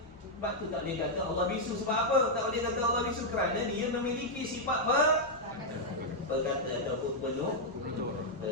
Sebab tu tak boleh kata Allah bisu. Sebab apa? Tak boleh kata Allah bisu kerana dia memiliki sifat berkata ataupun penuh.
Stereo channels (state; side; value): normal; both; correlation -0.04